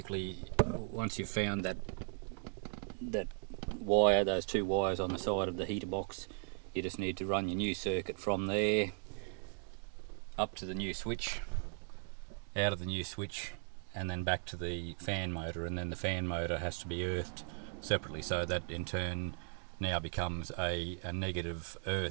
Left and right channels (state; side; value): silent; left; 53 dB below the other